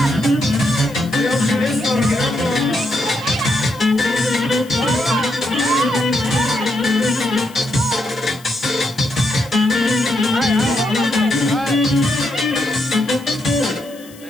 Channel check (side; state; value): left; noise; hiss, 22 dB below the sound